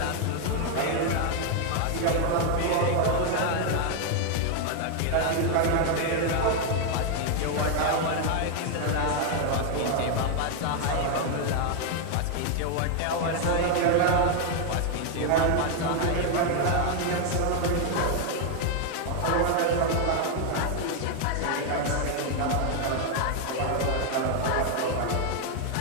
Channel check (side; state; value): both; different; correlation 0.00